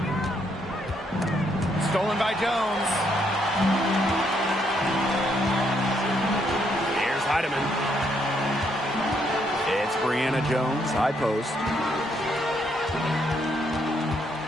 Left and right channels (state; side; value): normal; both; correlation 0.73